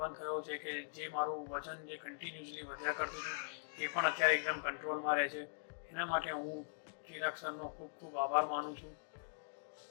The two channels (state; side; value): silent; right; digital silence